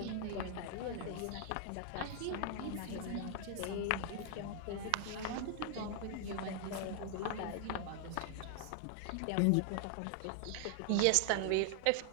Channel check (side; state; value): both; different; correlation 0.00